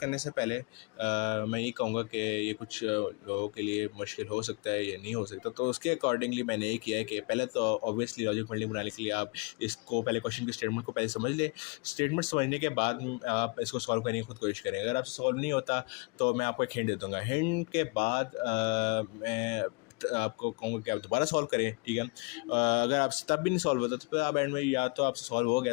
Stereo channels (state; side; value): quieter; right; 30.9 dB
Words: से पहले मैं ये कहूँगा कि ये कुछ लोगों के लिए मुश्किल हो सकता है या नहीं हो सकता, तो उसके अकॉर्डिंगली मैंने ये किया है कि पहले तो ऑब्वियसली लॉजिक बिल्डिंग बनाने के लिए आप इसको पहले क्वेश्चन की स्टेटमेंट को पहले समझ लें। स्टेटमेंट समझने के बाद आप इसको सॉल्व करने की खुद कोशिश करें। अगर आप सॉल्व नहीं होता तो मैं आपको एक हिंट दे दूँगा। हिंट के बाद मैं आपको कहूँगा कि आप दोबारा सॉल्व करें, ठीक है। अगर आपसे तब भी नहीं सॉल्व होता तो फिर आप एंड में या तो आपसे सॉल्व हो गया